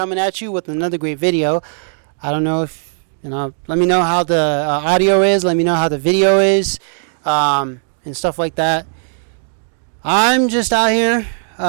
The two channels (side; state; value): left; silent; 68 dB below the other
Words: at you with another great video. I don't know if let me know how the audio is. Let me know how the video is, and stuff like that. I'm just out here